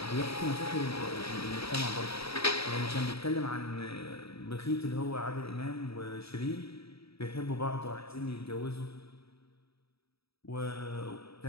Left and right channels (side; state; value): right; late; 0.77 ms